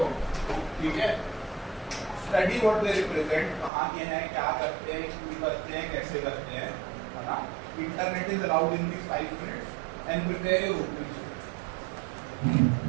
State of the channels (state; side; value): drops out; left; at 3.7 s